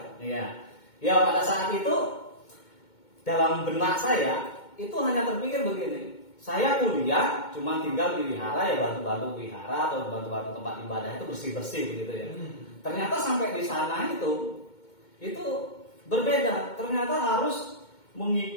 Iya. Ya pada saat itu dalam benak saya itu hanya terpikir begini. Saya kuliah cuma tinggal di wihara ya, bantu-bantu wihara atau bantu-bantu tempat ibadah itu bersih-bersih begitu ya. Ternyata sampai di sana itu berbeda. Ternyata harus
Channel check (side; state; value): right; late; 2.2 ms